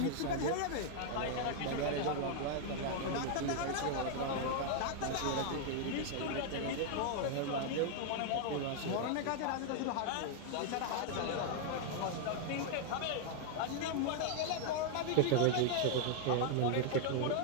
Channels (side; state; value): both; different; correlation 0.00